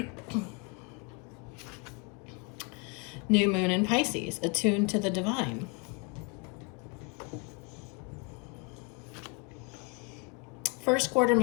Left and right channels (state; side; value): quieter; right; 31.9 dB